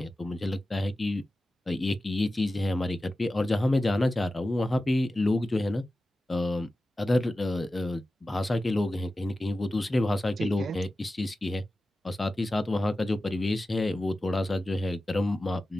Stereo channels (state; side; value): normal; both; correlation 0.94